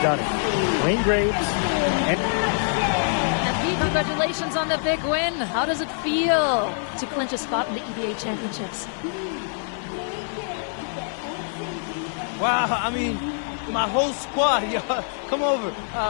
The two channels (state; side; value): silent; right; 55 dB below the other